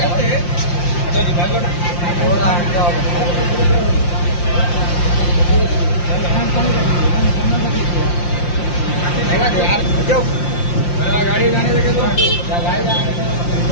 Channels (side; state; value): right; late; 5.7 ms